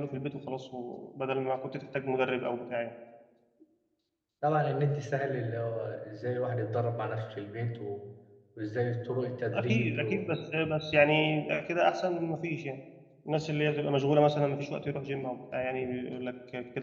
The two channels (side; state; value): both; identical; correlation 1.00